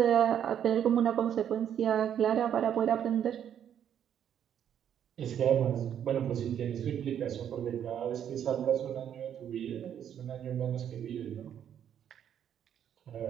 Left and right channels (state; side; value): quieter; left; 9.4 dB